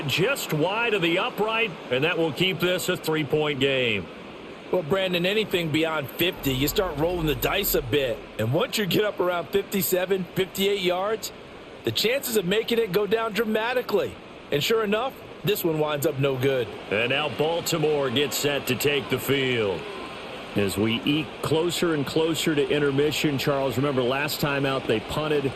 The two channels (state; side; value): identical; both; correlation 1.00